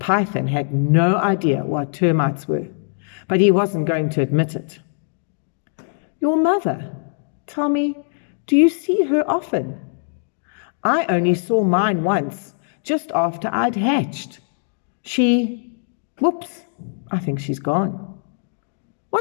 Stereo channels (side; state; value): right; silent; digital silence